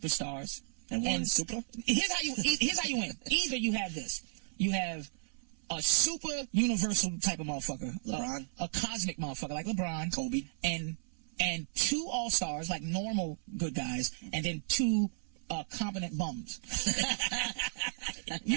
stars and 1 super. Here's how you win. Either you have this. You have a super universal type of motherfucker, LeBron, a cosmic motherfucker like LeBron, Kobe, and 2 all-stars, like normal good guys, and then 2 competent bums.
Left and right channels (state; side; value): silent; left; 55 dB below the other